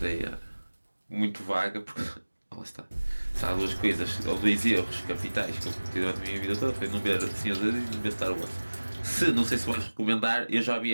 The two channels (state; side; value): inverted; both; correlation -1.00